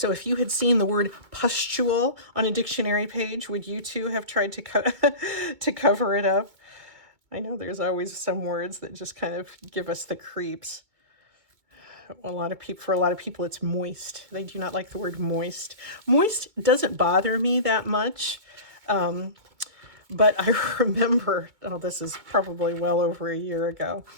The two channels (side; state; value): left; late; 2.2 ms